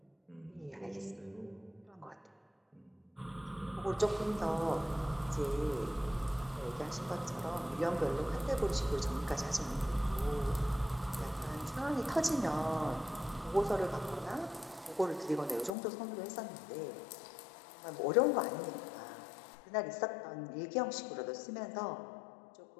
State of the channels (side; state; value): right; drops out; at 15.7 s